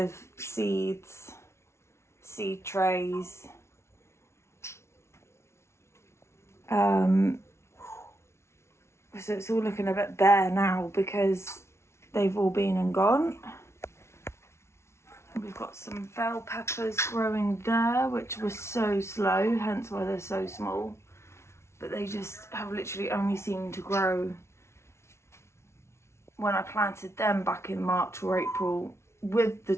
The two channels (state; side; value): late; right; 0.13 ms